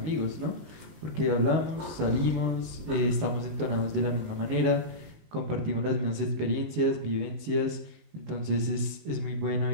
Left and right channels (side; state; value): left; late; 19 ms